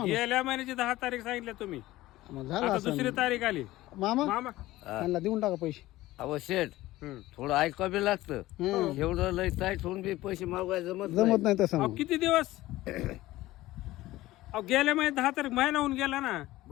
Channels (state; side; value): quieter; right; 17.0 dB